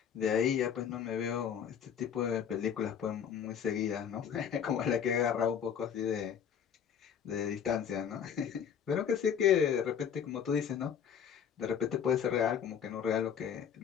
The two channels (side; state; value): right; quieter; 8.1 dB